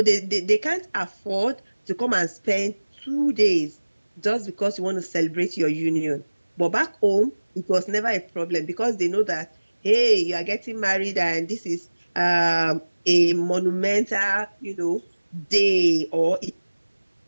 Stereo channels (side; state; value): both; inverted; correlation -1.00